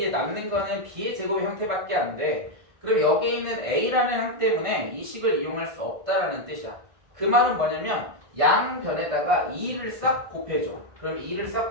남는 거는 b의 제곱의 형태밖에 안 돼. 그럼 여기 있는 a라는 항 때문에 이 식을 이용할 수 없다라는 뜻이야. 그 말은 뭐냐면 양변에다가 2를 싹 곱해줘. 그럼 2를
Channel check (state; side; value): late; left; 1.5 ms